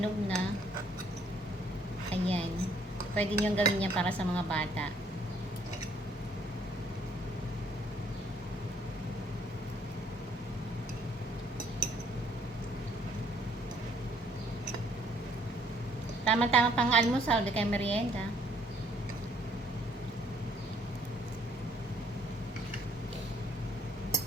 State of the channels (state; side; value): normal; both; correlation 0.64